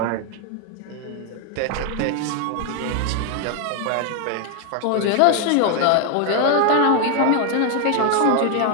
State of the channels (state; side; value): different; both; correlation 0.01